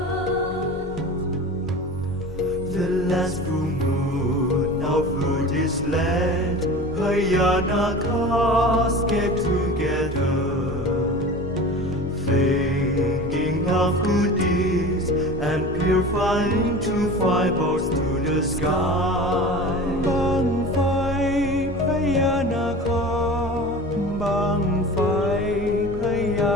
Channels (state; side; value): normal; both; correlation 0.35